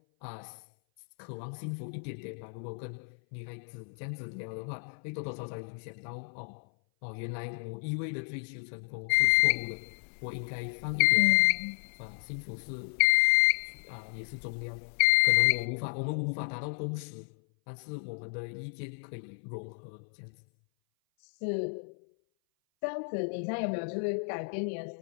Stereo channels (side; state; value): right; silent; 57 dB below the other